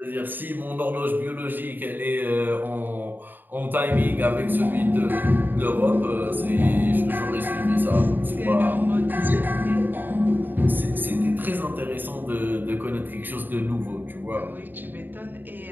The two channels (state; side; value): late; left; 0.091 ms